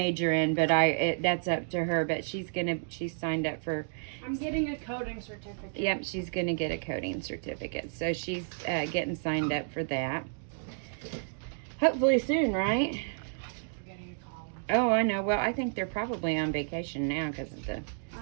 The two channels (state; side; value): silent; left; digital silence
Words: in, but that's up to her. But she's signed up for. I'm getting a coding certificate. Yep, she's gonna get a coding certificate, so she's getting signed up for that. Hopefully soon, right? Forgetting to call them. Oh, I know. Well, I think they're probably on vacation now because of the